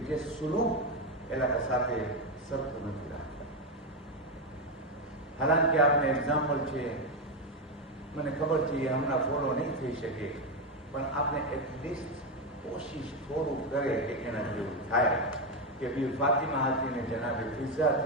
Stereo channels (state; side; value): normal; both; correlation 0.09